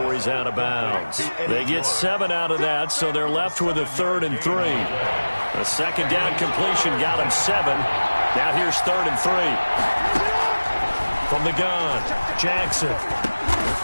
he's out of bounds. They get 7 out of that, so they're left with a 3rd and 3. The 2nd down completion got him 7. Now here's 3rd and 3. From the gun, Jackson.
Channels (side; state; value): both; inverted; correlation -1.00